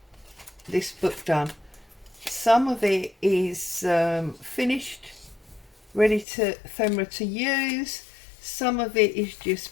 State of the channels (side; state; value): right; drops out; at 6.2 s